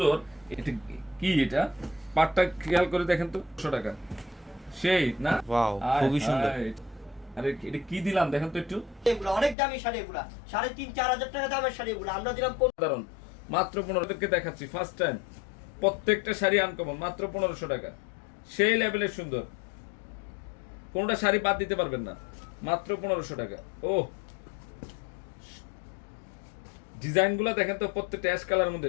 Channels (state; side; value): drops out; right; at 9.6 s